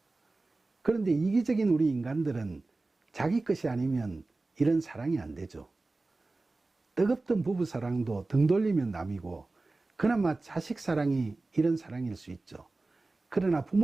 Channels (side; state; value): left; quieter; 3.3 dB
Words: 그런데 이기적인 우리 인간들은 자기 것이 아니면 이런 사랑이 안 되죠. 뜨겁던 부부 사랑도 등 돌리면 남이고 그나마 자식 사랑이 이런 사랑일 수 있죠. 그러나